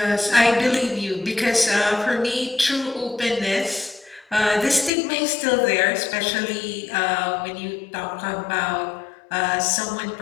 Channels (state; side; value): drops out; right; at 4.9 s